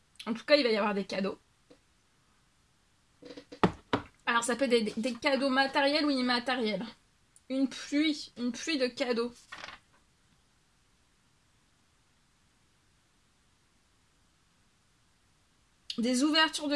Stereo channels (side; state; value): both; identical; correlation 1.00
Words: en tout cas, il va y avoir des cadeaux. Alors, ça peut être des cadeaux matériels ou immatériels. Une pluie de cadeaux. Des ouvertures de